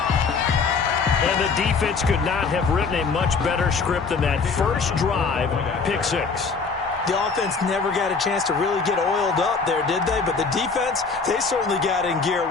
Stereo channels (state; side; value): quieter; right; 4.9 dB